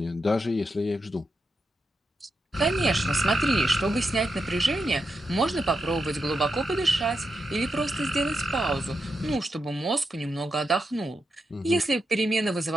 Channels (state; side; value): normal; both; correlation 0.86